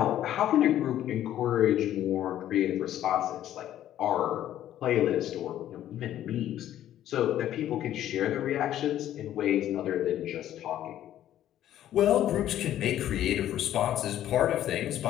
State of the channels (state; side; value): quieter; right; 12.1 dB